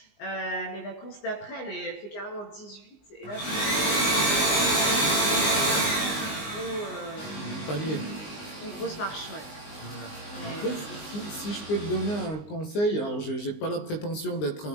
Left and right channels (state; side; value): late; right; 19 ms